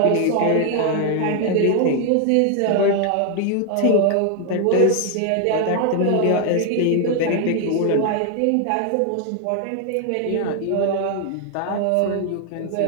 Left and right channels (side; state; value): both; different; correlation 0.00